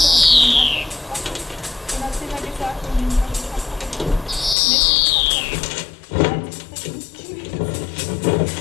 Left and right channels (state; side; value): drops out; right; at 4.5 s